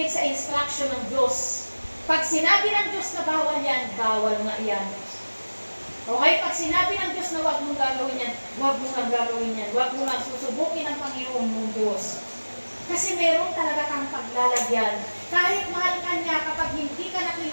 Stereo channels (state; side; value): inverted; both; correlation -1.00